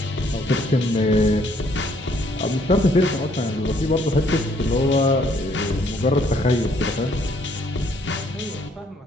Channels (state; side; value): normal; both; correlation 0.66